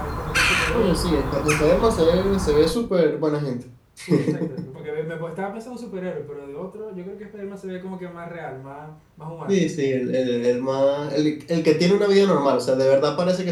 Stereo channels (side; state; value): both; identical; correlation 1.00